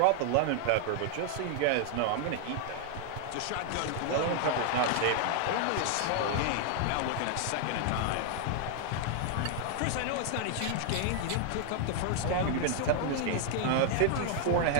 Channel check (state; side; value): different; both; correlation 0.00